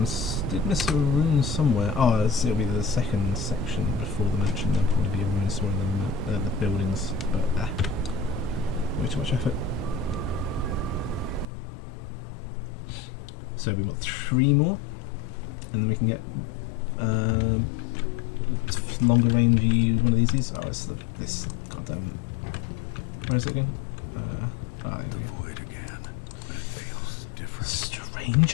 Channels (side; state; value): right; drops out; at 11.5 s